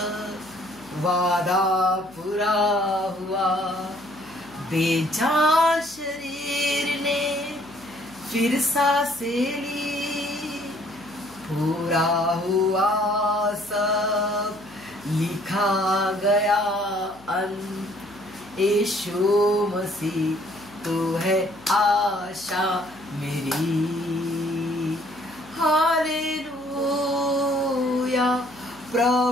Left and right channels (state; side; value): noise; left; hum, 23 dB below the sound